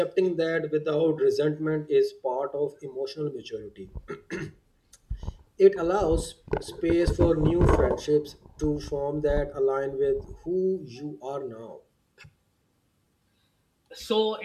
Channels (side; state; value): both; identical; correlation 1.00